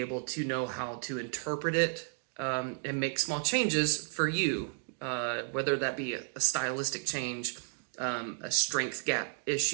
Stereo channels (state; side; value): silent; left; digital silence